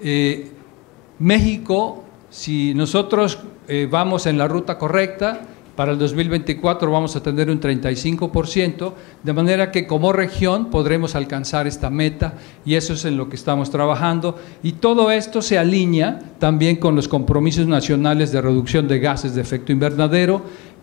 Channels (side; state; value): right; quieter; 25.3 dB